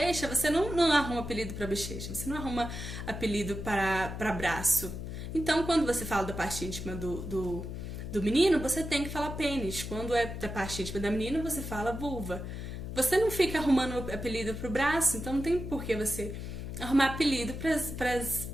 você não arruma apelido para bochecha, você não arruma apelido para braço. Então, quando você fala da parte íntima do menino, você tem que falar pênis. Quando é da parte íntima da menina, você fala vulva. Você não fica arrumando apelido pro braço, então não tem por que você arrumar apelido para as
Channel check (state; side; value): noise; left; hum, 7 dB below the sound